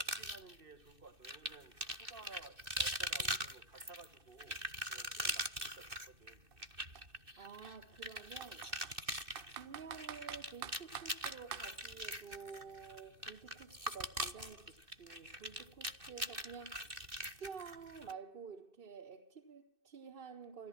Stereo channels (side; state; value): left; late; 2.6 ms